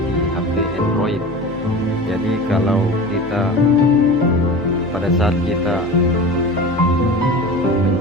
di HP Android. Jadi kalau kita pada saat kita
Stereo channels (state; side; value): noise; right; hum, 17 dB below the sound